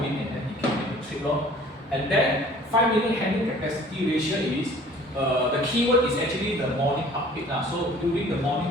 and then he can make the trip. And then 5-minute handling capacity ratio is the keyword is actually the morning update. So during the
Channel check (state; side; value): normal; both; correlation 0.50